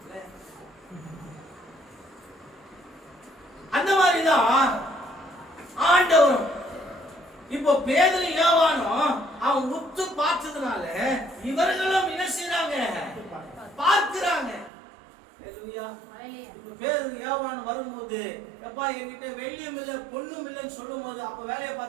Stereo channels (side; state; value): left; drops out; at 14.7 s